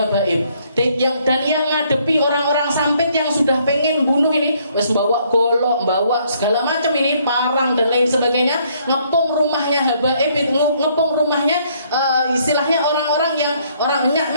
Dan yang ngadepi orang-orang sampit yang sudah pengen bunuh ini, wes bawa golok, bawa segala macam ini, parang dan lain sebagainya, ngepung rumahnya habaib, ngepung rumahnya istilahnya orang-orang yang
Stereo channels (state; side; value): inverted; both; correlation -0.66